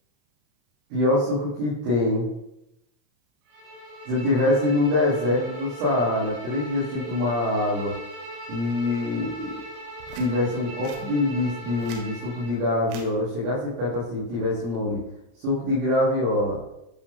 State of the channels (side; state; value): left; late; 34 ms